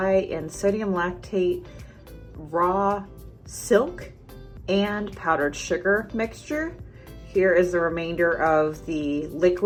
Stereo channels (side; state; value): both; identical; correlation 1.00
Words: and sodium lactate raw silk and powdered sugar mixture. Here is the remainder of the